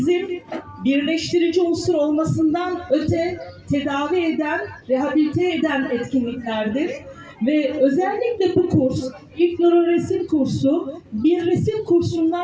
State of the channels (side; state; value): both; identical; correlation 1.00